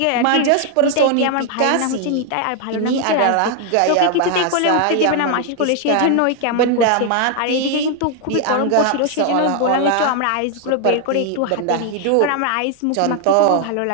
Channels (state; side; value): different; both; correlation 0.00